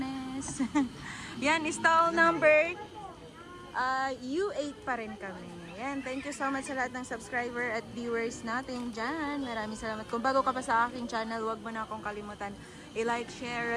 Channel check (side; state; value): both; identical; correlation 1.00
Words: Yan, stall number U8 pa rin kami. Yan, thank you so much sa lahat ng subscriber at viewers natin dyan. Maraming salamat. Kung bago ka pa sa aking channel, huwag mo na akong kalimutan i-like,